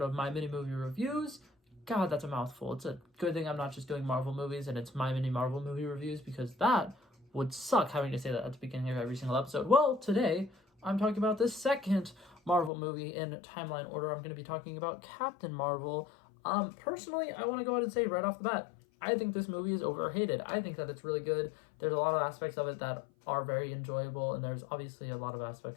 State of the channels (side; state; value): right; drops out; at 12.7 s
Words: of My Mini Movie Reviews. God, that's a mouthful. It's a good thing I'm not just doing Marvel movies and it's My Mini Marvel Movie Reviews, because that would suck having to say that at the beginning of every single episode. Well, today I'm talking about the second Marvel movie in timeline order. I'm going to be talking about Captain Marvel. Personally, I want to go ahead and say right off the bat, I think this movie is overhated. I think that it's really good. There's a lot of aspects of it that are very enjoyable, and there's obviously a lot of